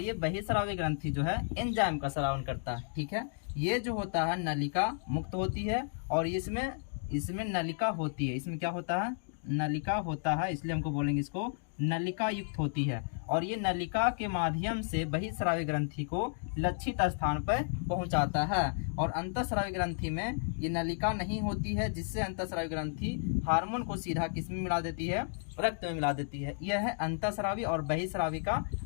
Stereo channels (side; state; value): right; silent; digital silence